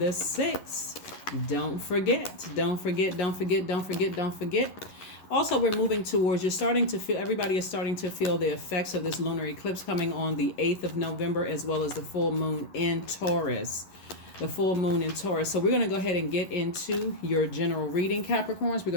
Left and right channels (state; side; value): late; right; 11 ms